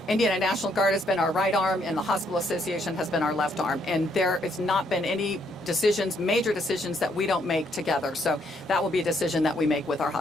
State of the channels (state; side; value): normal; both; correlation 0.72